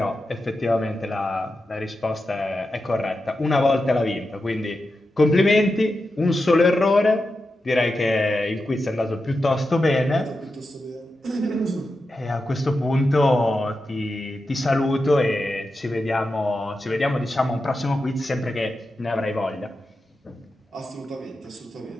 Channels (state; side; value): normal; both; correlation 0.90